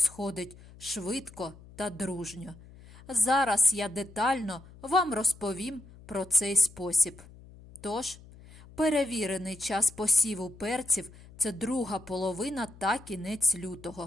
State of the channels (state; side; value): noise; left; hum, 21 dB below the sound